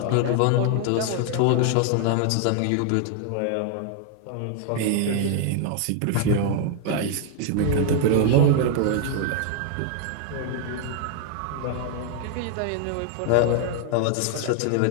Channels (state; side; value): different; both; correlation 0.00